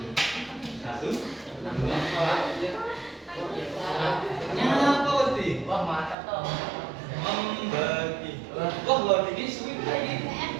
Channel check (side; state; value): left; drops out; at 6.2 s